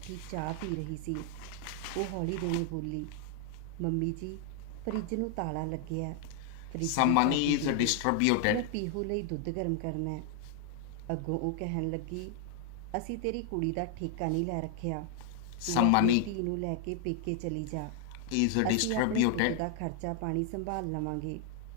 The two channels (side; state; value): both; different; correlation 0.00